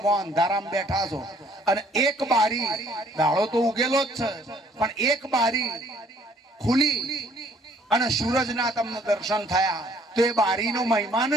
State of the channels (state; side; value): normal; both; correlation 0.61